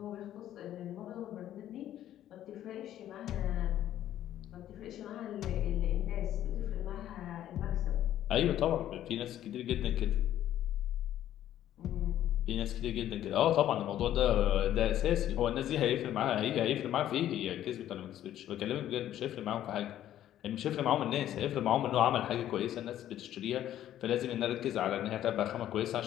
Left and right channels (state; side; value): quieter; right; 12.0 dB